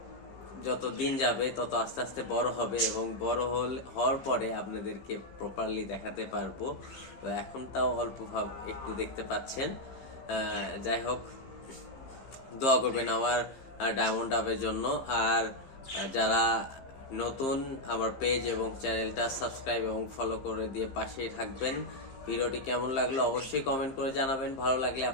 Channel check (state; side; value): late; right; 15 ms